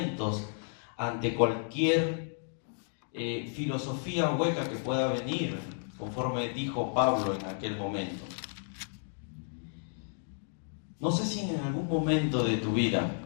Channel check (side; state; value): right; silent; digital silence